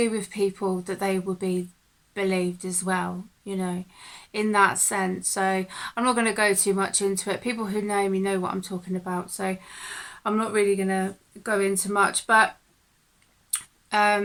with people that they will be believed as well, you know, in that sense. So I'm not going to go too much into it. People who know me know what I'm talking about. So I'm not really going to go into much. But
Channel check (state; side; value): identical; both; correlation 1.00